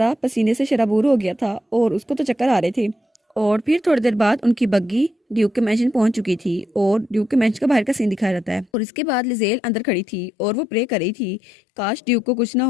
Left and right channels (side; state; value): right; drops out; at 8.7 s